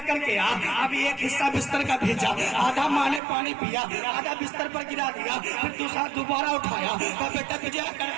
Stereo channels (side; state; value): left; drops out; at 3.2 s